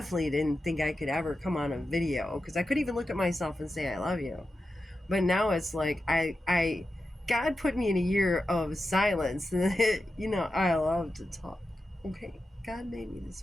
didn't think I could ever come on a video, because I couldn't even look at myself and say I love you. But now it's like God put me in a year of silence. I love to talk. Okay, God made me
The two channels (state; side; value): normal; both; correlation 0.90